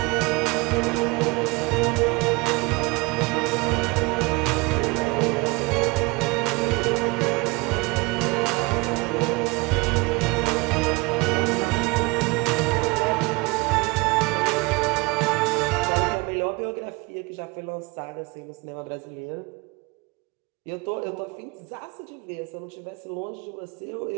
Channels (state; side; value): quieter; left; 25.3 dB